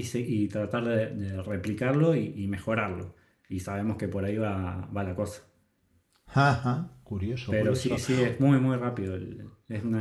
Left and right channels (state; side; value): identical; both; correlation 1.00